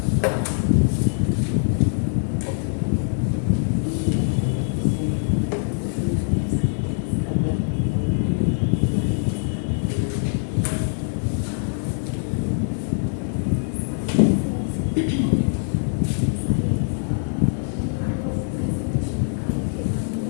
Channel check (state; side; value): silent; right; digital silence